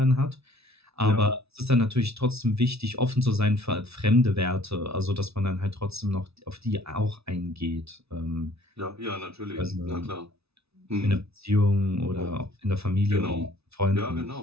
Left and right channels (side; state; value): left; late; 0.79 ms